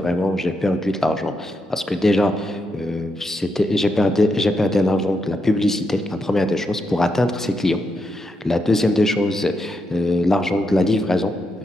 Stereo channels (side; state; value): both; normal; correlation 0.83